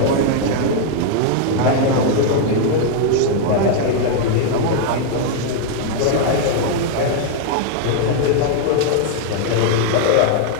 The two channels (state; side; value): different; both; correlation 0.00